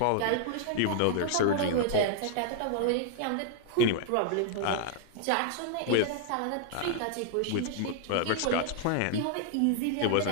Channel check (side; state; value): both; different; correlation 0.00